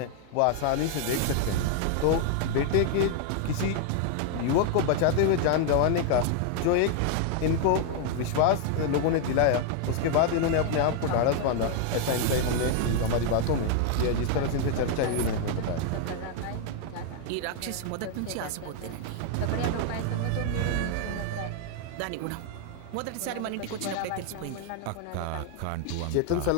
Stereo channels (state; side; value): different; both; correlation 0.00